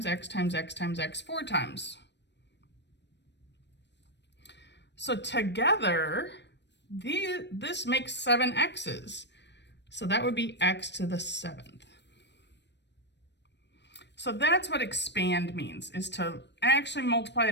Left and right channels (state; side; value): late; right; 0.51 ms